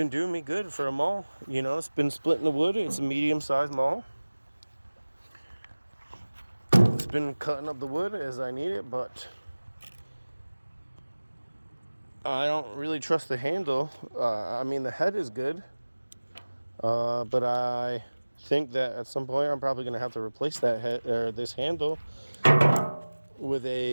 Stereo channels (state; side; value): inverted; both; correlation -1.00